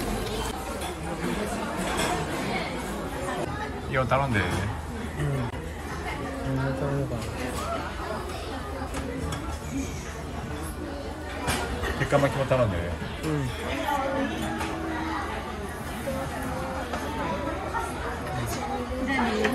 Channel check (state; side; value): identical; both; correlation 1.00